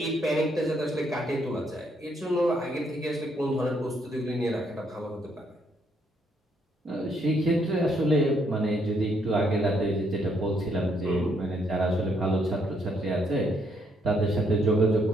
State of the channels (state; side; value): normal; both; correlation 0.72